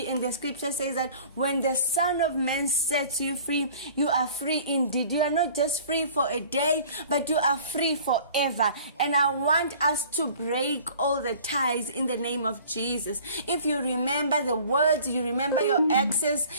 and the scripture says that when the Son of Man sets you free, you are free indeed. You are not just free for a day, but you are free forever. And I want us to break all the ties in the name of Jesus. If you remember the words, you remember your exes,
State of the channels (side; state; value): both; inverted; correlation -0.49